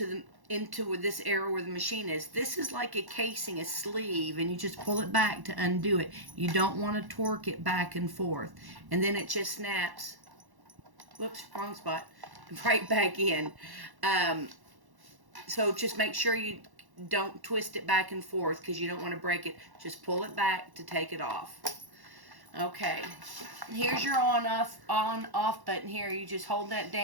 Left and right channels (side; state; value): left; late; 1.1 ms